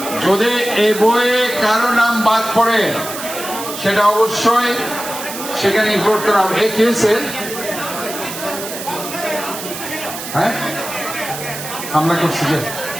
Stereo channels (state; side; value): noise; right; hiss, 9 dB below the sound